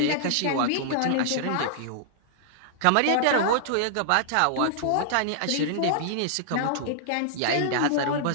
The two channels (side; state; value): both; different; correlation -0.01